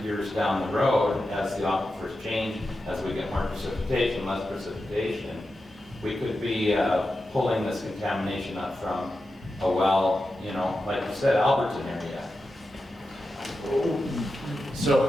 years down the road, as the aquifers change, as we get more precipitation, less precipitation, we could be pulling this contamination up from a well, you know, like you said, Alberton area.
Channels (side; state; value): both; normal; correlation 0.90